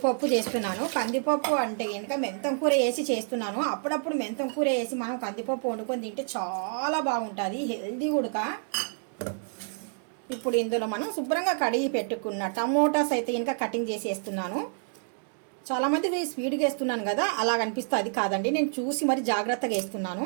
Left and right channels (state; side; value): silent; left; 58 dB below the other